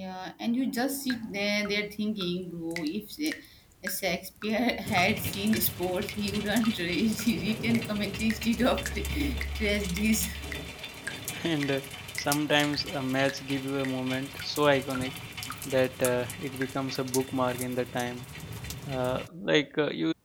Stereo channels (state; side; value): identical; both; correlation 1.00